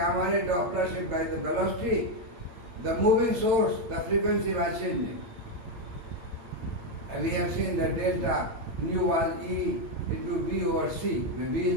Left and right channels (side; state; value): left; late; 8.8 ms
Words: ray Doppler shift by the velocity, the moving source, the frequency was changing. And we have seen that delta nu was E into B over C, where B